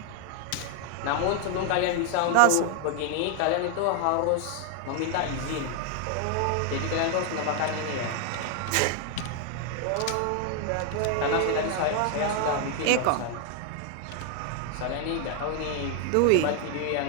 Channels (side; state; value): both; different; correlation 0.00